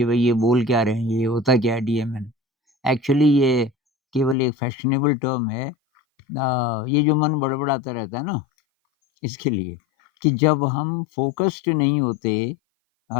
भई ये बोल क्या रहे हैं, ये होता क्या है डीएमएन। एक्चुअली ये केवल एक फैशनेबल टर्म है। ये जो मन बड़बड़ाता रहता है ना, इसके लिए कि जब हम फ़ोकस्ड नहीं होते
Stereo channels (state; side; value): drops out; right; at 4.4 s